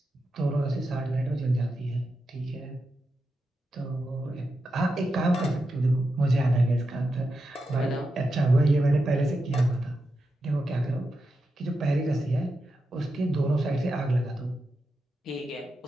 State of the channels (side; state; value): both; normal; correlation 0.88